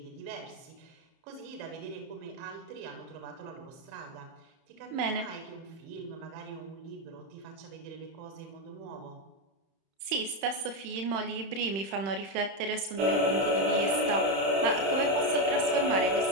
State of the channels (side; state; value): left; late; 31 ms